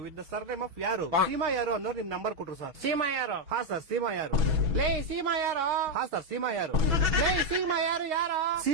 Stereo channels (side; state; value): left; late; 6.1 ms